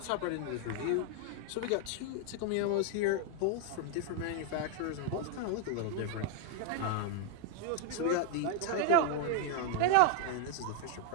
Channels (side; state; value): both; different; correlation 0.00